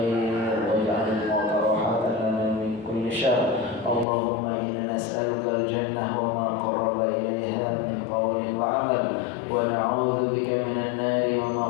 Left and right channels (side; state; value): right; drops out; at 4.0 s